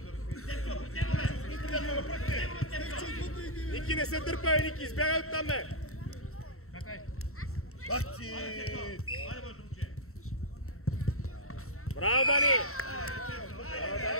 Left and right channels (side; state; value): right; late; 0.63 ms